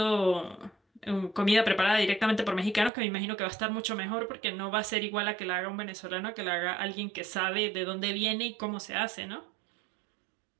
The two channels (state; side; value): drops out; left; at 2.9 s